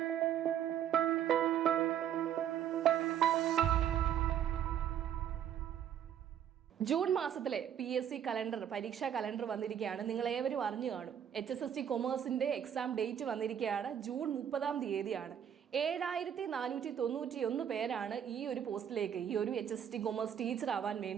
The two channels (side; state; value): left; quieter; 9.5 dB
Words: ജൂൺ മാസത്തിലെ PSC കലണ്ടർ, പരീക്ഷാ കലണ്ടർ വന്നിരിക്കുകയാണ്. നിങ്ങൾ ഏവരും അറിഞ്ഞു കാണും. HSST കൊമേഴ്സിന്റെ എക്സാം ഡേറ്റ് വന്നിരിക്കുകയാണ്. ജൂൺ 30 7,491 പേരാണ് ഈ ഒരു പോസ്റ്റിലേക്ക്, ഈ ഒരു HSST കൊമേഴ്സ് ടീച്ചർ ആവാൻ